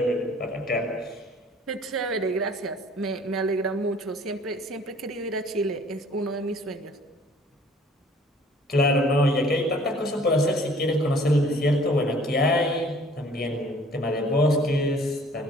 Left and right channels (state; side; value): normal; both; correlation 0.54